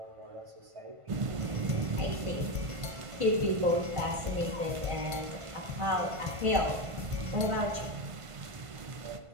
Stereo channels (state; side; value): late; left; 1.5 ms